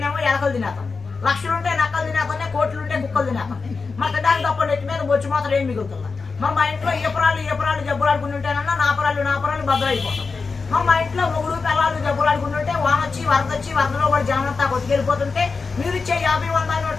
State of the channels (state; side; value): quieter; right; 4.5 dB